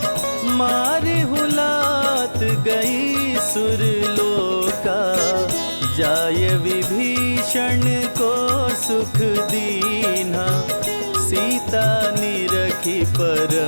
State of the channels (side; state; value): both; inverted; correlation -1.00